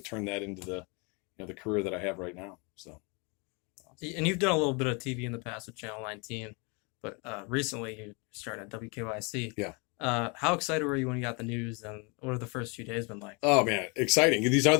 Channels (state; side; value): quieter; right; 31.7 dB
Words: that into the career that I have right now. So, and you've done a little bit of TV in the past with Channel 19, but recently you started at WKYC. Yeah. How excited were you when you got the news, and what have the first few days been like? Oh man, exciting! These are